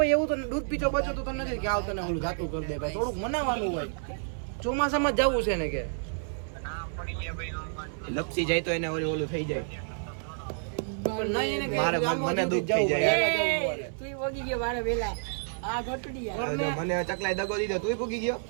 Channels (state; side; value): silent; left; 58 dB below the other